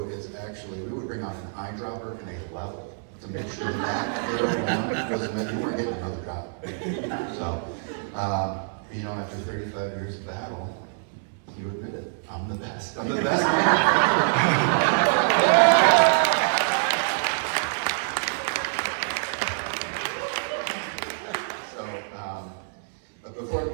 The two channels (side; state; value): left; silent; 61 dB below the other